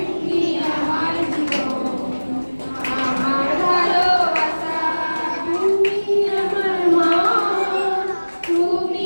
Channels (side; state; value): both; inverted; correlation -1.00